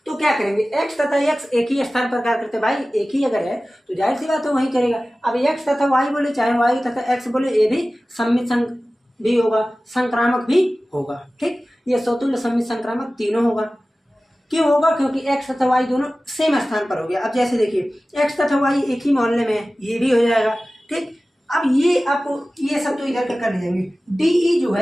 तो क्या करेंगे, एक्स तथा एक्स एक ही स्थान पर कार्य करते, भाई एक ही अगर है तो जाहिर सी बात है वही करेगा। अब एक्स तथा वाई बोले, चाहे वाई तथा एक्स बोले, ये भी सम्मित भी होगा, संक्रामक भी होगा। ठीक, ये स्वतुल्य सम्मित संक्रामक तीनों होगा। क्यों होगा, क्योंकि एक्स तथा वाई दोनों सेम स्थान पर हो गया। अब जैसे देखिए एक्स तथा वाई एक ही मोहल्ले में है, ये भी हो जाएगा। ठीक, अब ये आपको ये सब तो इधर कर लीजिएंगे, डी जो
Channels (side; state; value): both; normal; correlation 0.96